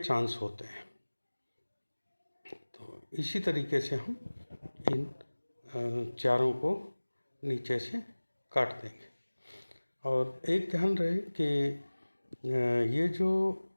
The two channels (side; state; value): both; inverted; correlation -1.00